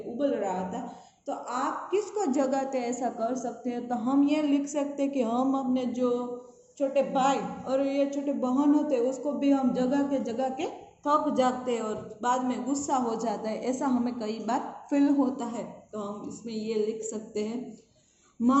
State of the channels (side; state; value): both; identical; correlation 1.00